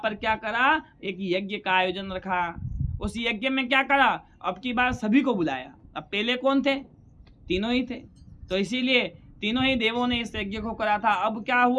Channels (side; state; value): both; identical; correlation 1.00